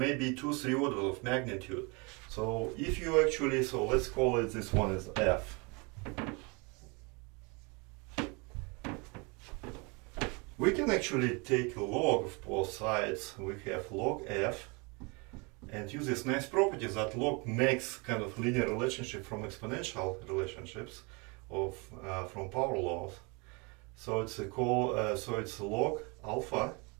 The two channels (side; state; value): left; quieter; 29.9 dB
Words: 2-3 orders of magnitude. So if you actually, so let's call it, this one is F. We can actually take a log of both sides. We have log F and use this nice property that log makes kind of linear relationship from exponential relationships of from power laws. So it's a so it's log alpha